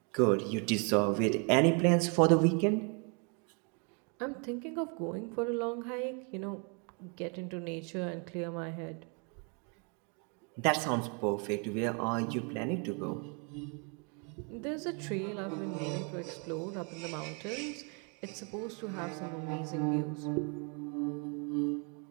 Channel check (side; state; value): left; quieter; 36.1 dB